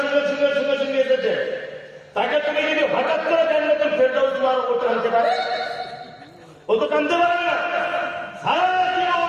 শুনে শুনে শুনে এসেছে, তাকে তুমি যদি হঠাৎ করে জান্নাতুল ফেরদাউস মারো, ও টানতে পারে? ও তো টানতে পারে না। সারা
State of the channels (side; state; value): both; identical; correlation 1.00